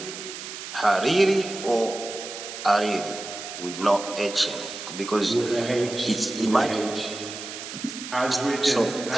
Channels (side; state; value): right; noise; hiss, 10 dB below the sound